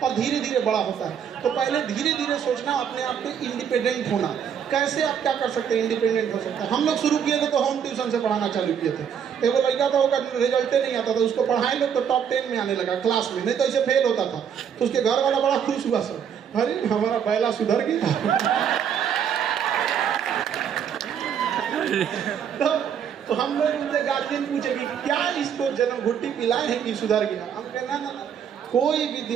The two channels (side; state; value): left; quieter; 8.1 dB